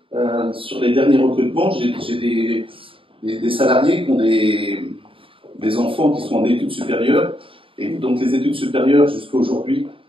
Sur les derniers recrutements, j'ai des salariés qui ont des enfants qui sont en études supérieures. Et donc les études supérieures, jusqu'à aujourd'hui,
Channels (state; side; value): late; left; 0.26 ms